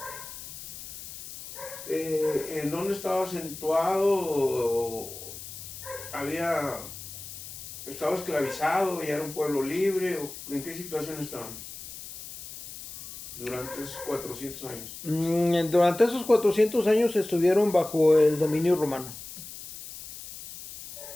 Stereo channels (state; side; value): noise; left; hiss, 12 dB below the sound